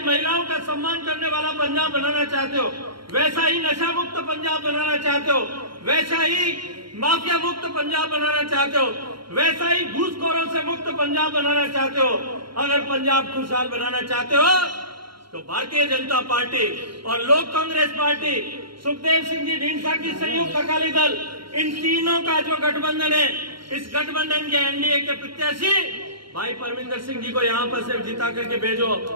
महिलाओं का सम्मान करने वाला पंजाब बनाना चाहते हो, वैसा ही नशा मुक्त पंजाब बनाना चाहते हो, वैसा ही माफिया मुक्त पंजाब बनाना चाहते हो, वैसा ही घूसखोरों से मुक्त पंजाब बनाना चाहते हो। अगर पंजाब खुशहाल बनाना चाहते हो तो भारतीय जनता पार्टी और लोक कांग्रेस पार्टी, सुखदेव सिंह जी ढींढसा की संयुक्त अकाली दल, इन तीनों का जो गठबंधन है, इस गठबंधन के एनडीए के प्रत्याशी भाई परमिंदर सिंह जी को यहाँ पर सिर्फ जिता करके भेजो।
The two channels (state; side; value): late; left; 0.73 ms